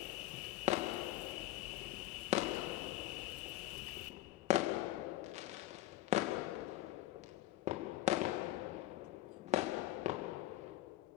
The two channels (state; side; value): quieter; right; 15.8 dB